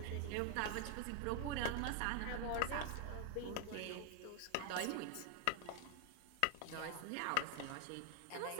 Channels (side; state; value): both; different; correlation 0.00